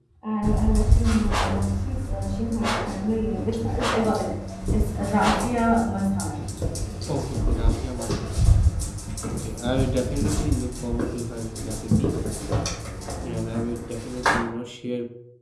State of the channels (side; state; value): both; identical; correlation 1.00